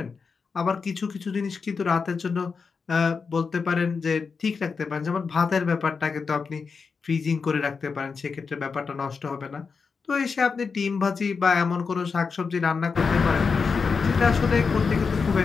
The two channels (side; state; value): right; quieter; 5.2 dB